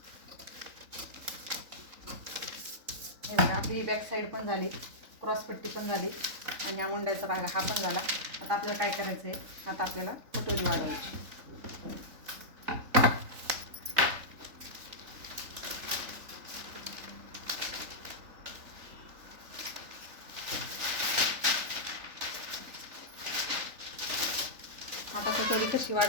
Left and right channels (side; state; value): left; late; 3.7 ms